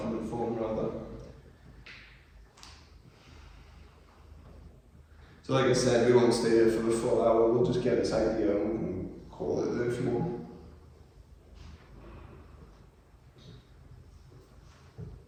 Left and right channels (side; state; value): both; identical; correlation 1.00